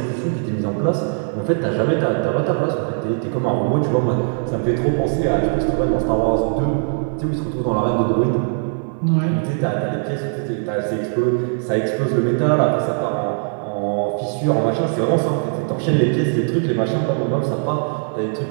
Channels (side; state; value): left; silent; 62 dB below the other